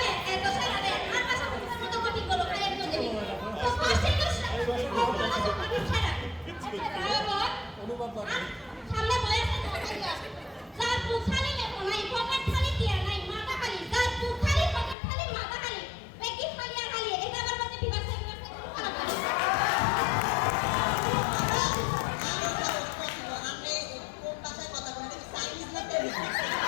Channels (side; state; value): right; drops out; at 15.0 s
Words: এত ছাড়া রে আর ভাষা বুঝার মতো কঠিন বলো খাই একদম দেবি তো কষ্ট করে ছাড়া অনুভব করে সামনে বয়সে যার বুখালি লেখো নাই পকেট খালি দিয়া নাই মাথা খালি যার বুখালি পকেট খালি মাথা খালি বেকি খালি আর খালি এটা আমার মধ্যে বিবাসে খারাপ করে আপনি কোন ভাষায় কথা বলেন চাইনিজ না তেলুগু